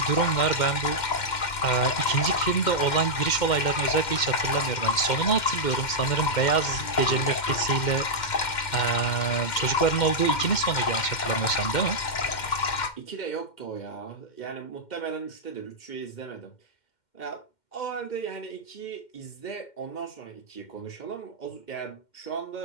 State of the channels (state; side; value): late; right; 2.1 ms